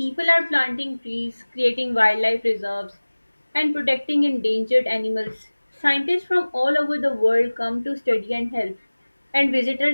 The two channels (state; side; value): inverted; both; correlation -1.00